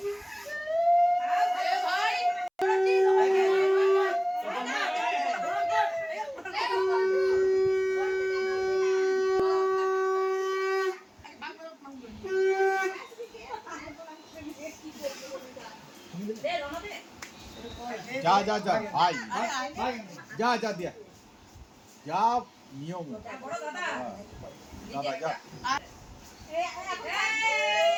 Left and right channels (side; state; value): both; identical; correlation 1.00